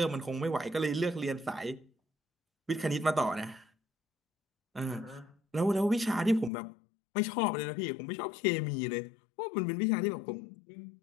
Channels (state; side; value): drops out; right; at 6.5 s